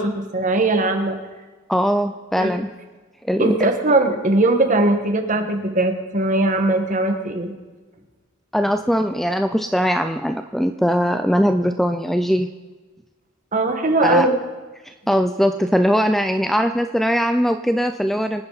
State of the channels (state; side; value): normal; both; correlation 0.63